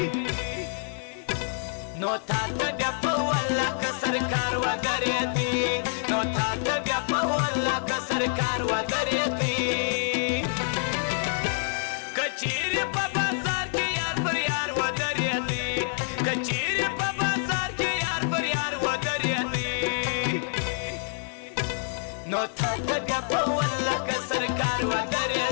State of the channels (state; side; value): silent; right; 59 dB below the other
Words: نو تا ته بیا په والله که سرکار ودرېدی نو تا ته بیا په والله که سرکار ودرېدی कचेरी په بازار کې یار پر یار ودرېدی कचेरी په بازار کې یار پر یار ودرېدی نو تا ته بیا په والله که سرکار